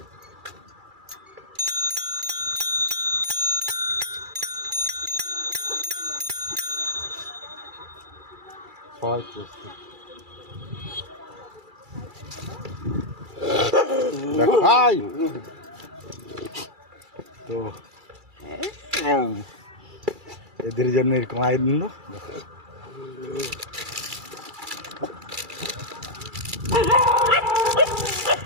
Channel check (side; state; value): left; late; 2.3 ms